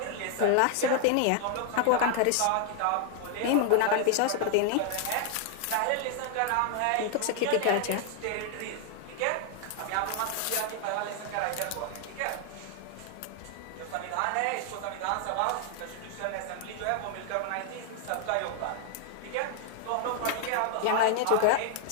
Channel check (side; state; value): both; different; correlation 0.00